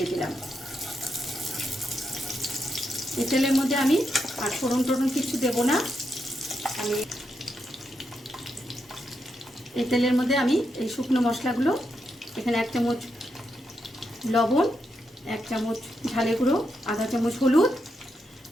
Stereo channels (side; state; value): both; normal; correlation 0.83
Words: দিলাম। এই তেলের মধ্যে আমি আর ফোড়ন টোড়ন কিছু দেবো না। আমি এই তেলের মধ্যে আমি এই শুকনো মশলাগুলো, এখানে 1 চামচ লবণ, 1 চামচ ঝালে গুঁড়ো, আধা চামচ হলুদ,